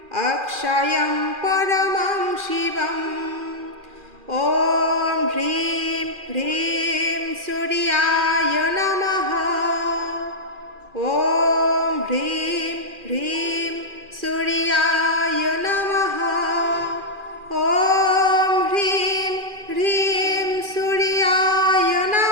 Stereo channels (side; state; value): left; late; 2.4 ms